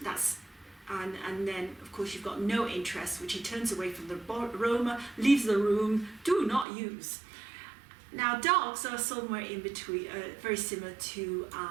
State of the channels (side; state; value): left; drops out; at 6.7 s